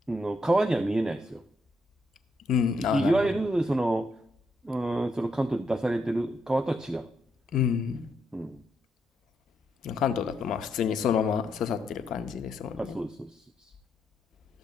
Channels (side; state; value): both; normal; correlation 0.78